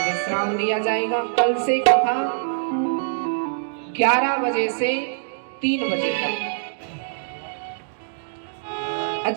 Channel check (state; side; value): silent; left; digital silence